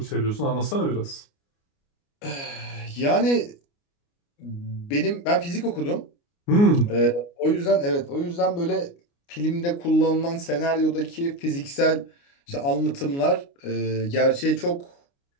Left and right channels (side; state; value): right; late; 29 ms